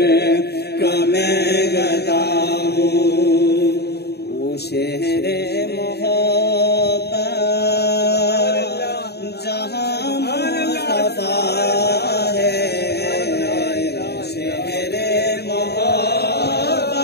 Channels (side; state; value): right; late; 0.47 ms